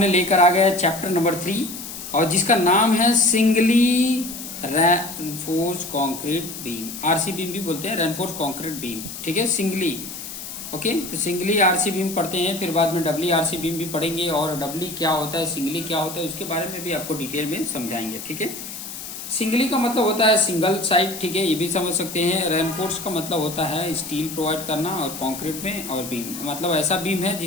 लेकर आ गया चैप्टर नंबर 3 और जिसका नाम है singly reinforce concrete beam. RC beam भी बोलते हैं, रेनफोर्स कंक्रीट बीम। ठीक है, सिंगली। ओके, तो सिंगली आरसी बीम पढ़ते हैं, फिर बाद में डबली आरसी बीम भी पढ़ेंगे और डबली क्या होता है, सिंगली क्या होता है, उसके बारे में भी आपको डिटेल में समझाएंगे। ठीक है, सिंगली का मतलब होता है सिंगल साइड। ठीक है, ये भी समझ सकते हैं। रेनफोर्स का मतलब होता है स्टील प्रोवाइड करना और कंक्रीट में, और बीम मतलब ऐसा बीम है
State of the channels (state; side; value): noise; left; hiss, 10 dB below the sound